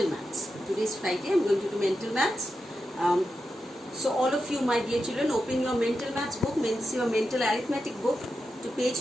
maths. Today is Friday. I am going to do mental maths. So all of you, my dear children, open your mental maths book, means your mental arithmetic book, to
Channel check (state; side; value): normal; both; correlation 0.89